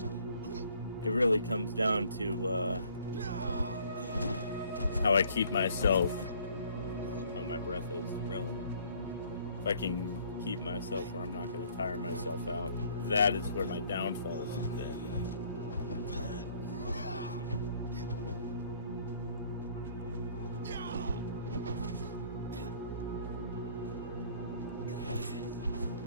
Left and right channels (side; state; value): both; inverted; correlation -0.59